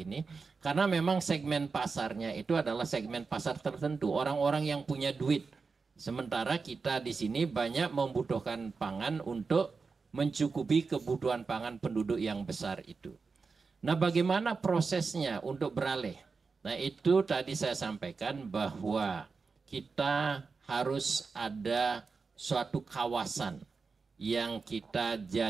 Karena memang segmen pasarnya itu adalah segmen pasar tertentu, orang-orang yang punya duit. Sementara kita di sini banyak membutuhkan pangan untuk mencukupi kebutuhan pangan penduduk yang besar itu. Nah, bagaimana prosesnya untuk beralih? Nah, itu tadi saya sampaikan bahwa kita harus ada suatu kawasan yang kita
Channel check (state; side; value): quieter; left; 4.7 dB